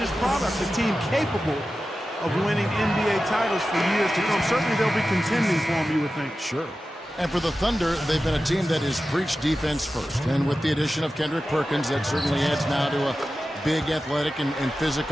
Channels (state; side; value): normal; both; correlation 0.93